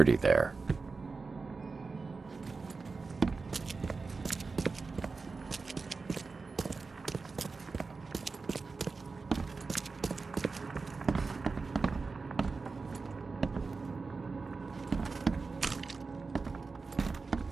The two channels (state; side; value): quieter; left; 4.2 dB